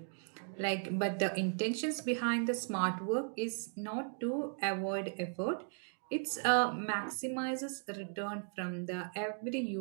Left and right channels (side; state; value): left; silent; 53 dB below the other